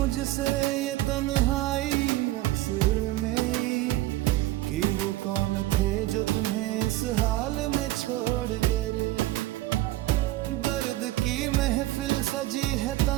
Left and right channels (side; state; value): left; quieter; 16.5 dB